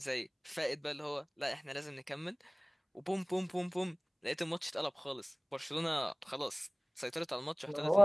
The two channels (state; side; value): identical; both; correlation 1.00